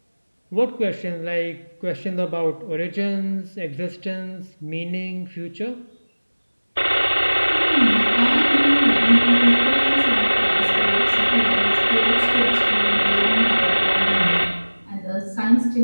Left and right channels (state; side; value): inverted; both; correlation -1.00